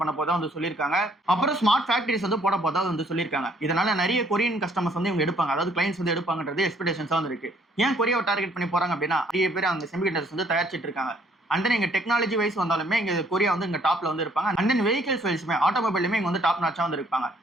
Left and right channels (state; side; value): normal; both; correlation 0.63